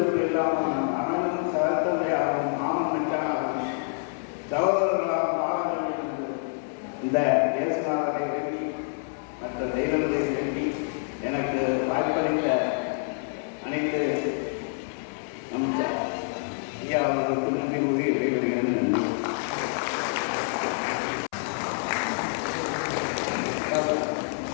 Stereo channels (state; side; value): silent; right; 60 dB below the other